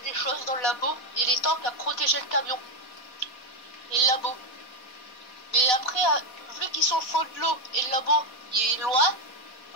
des choses dans le labo et les tanks à protéger le camion et le labo. Mais après, vu qu'ils sont au fond de l'eau et le labo il est loin,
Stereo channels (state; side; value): late; right; 4.2 ms